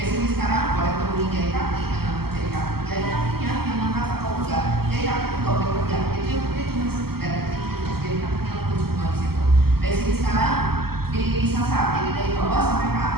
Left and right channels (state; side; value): late; left; 0.95 ms